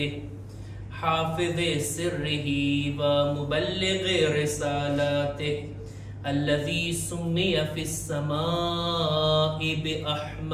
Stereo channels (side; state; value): both; identical; correlation 1.00